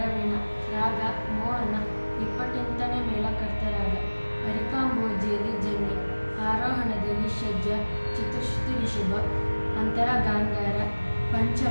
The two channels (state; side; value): inverted; both; correlation -1.00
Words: ರಾಗ ಮೋಹನ 28ನೇ ಮೇಳಕರ್ತರಾಗ ಅರಿಕಾಂಬೋಜಿಯಲ್ಲಿ ಜನ್ಯ ಆರೋಹಣದಲ್ಲಿ ಷಡ್ಜ ಚತುಶ್ರುತಿ ರಿಷಭ ಅಂತರ ಗಾಂಧಾರ